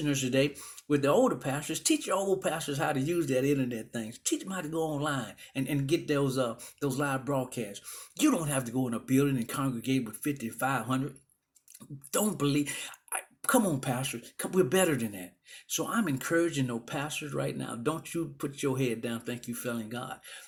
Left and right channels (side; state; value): both; identical; correlation 1.00